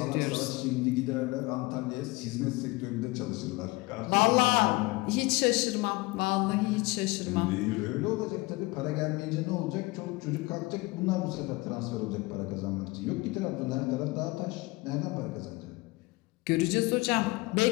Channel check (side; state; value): right; quieter; 23.0 dB